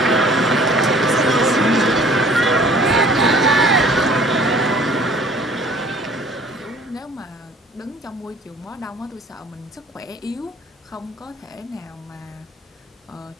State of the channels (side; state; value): both; normal; correlation 0.52